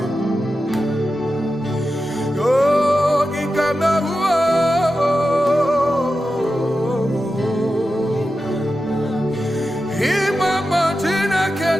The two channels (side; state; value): both; normal; correlation 0.91